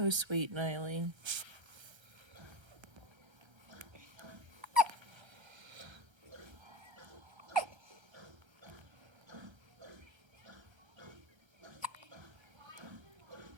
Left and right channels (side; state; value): left; late; 1.3 ms